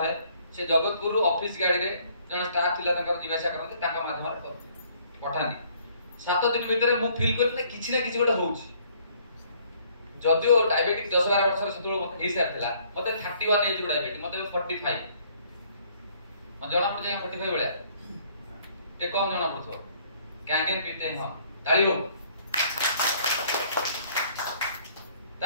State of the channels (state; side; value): inverted; both; correlation -0.61